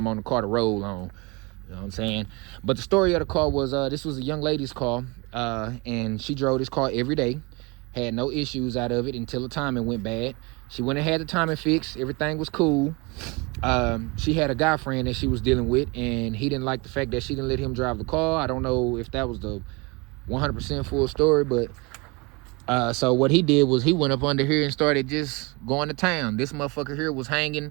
on the car to roll on. You know what I'm saying? But the story of the car was, this was a young lady's car, and she drove this car every day. Had no issues out of it until the timing went bad. She went and had the timing fixed. Everything was cool. She had a guy friend that she was dealing with, and he didn't like the fact that she didn't let him drive the car. I don't know if that was the 100% full story, but so what he did was he went up under here and started just going to town. This motherfucker here was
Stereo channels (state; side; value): quieter; left; 27.4 dB